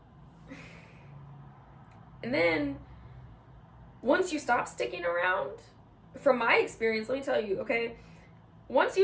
And then once you stop sticking around, from my experience, let me tell you, okay, once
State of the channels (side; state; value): both; identical; correlation 1.00